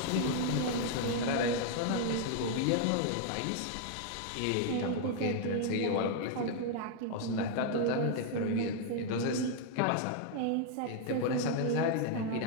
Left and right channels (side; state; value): both; different; correlation 0.00